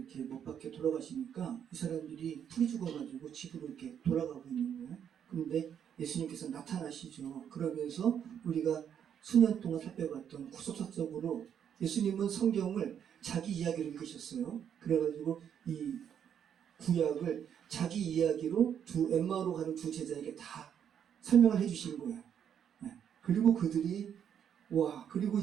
못 박혀 돌아가시니까 이 사람들이 풀이 죽어가지고 집으로 이렇게 돌아가고 있는 거예요. 그런데 예수님께서 나타나시죠. 그러면서 우리가 수년 동안 살펴봤던 구속사적으로 예수님은 성경을 자기 이야기로 읽으셨어요. 그래가지고 이 구약을 자기 이야기로 엠마오로 가는 두 제자에게 다 설명을 해주신 거예요. 그리고 그들이 그리고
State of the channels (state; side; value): quieter; left; 8.7 dB